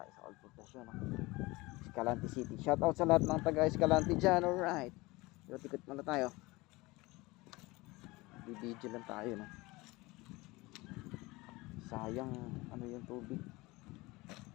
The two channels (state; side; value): quieter; right; 22.1 dB